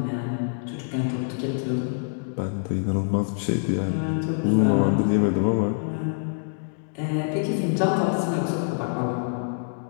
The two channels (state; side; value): silent; right; digital silence